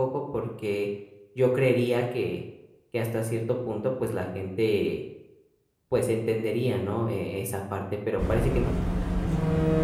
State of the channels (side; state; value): both; identical; correlation 1.00